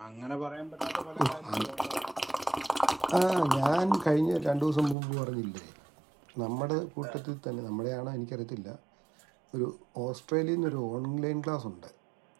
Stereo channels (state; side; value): drops out; left; at 5.0 s